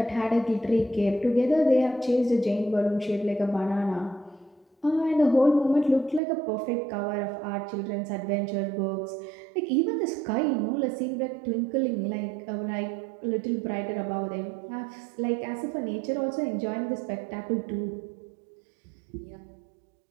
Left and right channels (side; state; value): left; drops out; at 6.2 s